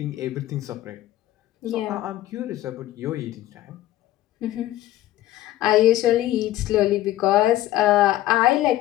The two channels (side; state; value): right; quieter; 14.7 dB